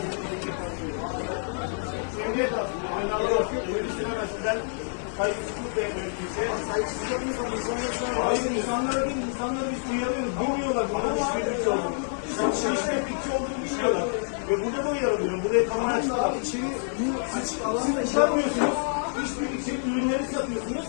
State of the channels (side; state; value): right; silent; digital silence